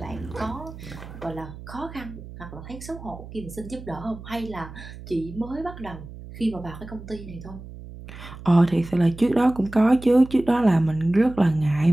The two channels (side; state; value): right; noise; hum, 14 dB below the sound